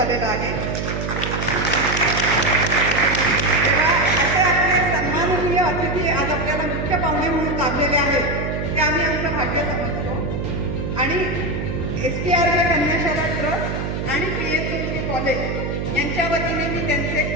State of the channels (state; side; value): noise; right; hum, 3 dB below the sound